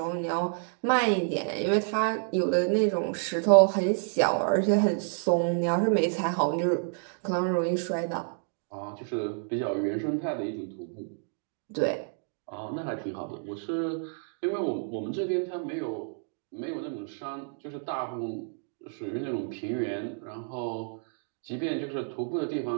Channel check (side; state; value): left; silent; 58 dB below the other